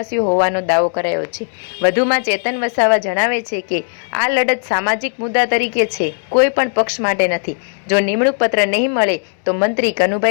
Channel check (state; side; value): silent; right; digital silence